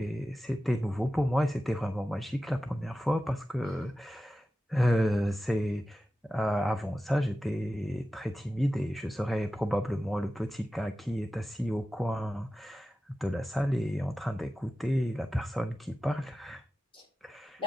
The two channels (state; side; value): normal; both; correlation 0.94